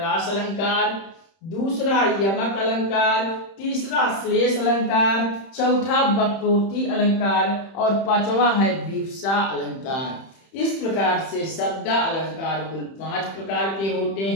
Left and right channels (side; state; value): right; late; 31 ms